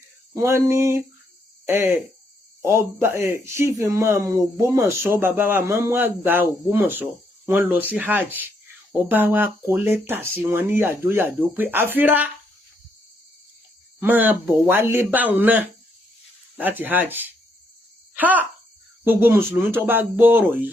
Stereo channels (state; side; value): normal; both; correlation 0.74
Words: wọ́n ní ọba chief imam Ògbómọ̀ṣọ́ bàbá wa mọ́mú àgbà Ògbómọ̀ṣọ́ wọ́n lọ sí hajj ọba wa kọ lẹ́tà sí wọn ní yàjóyàjó pé àfírá máa bọ̀ wálé báwọn náà láti hajj. Gbogbo mùsùlùmí tó bá gbọ́ ọ̀rọ̀